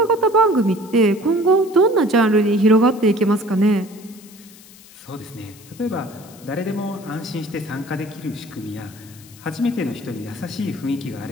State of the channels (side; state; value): left; noise; hiss, 22 dB below the sound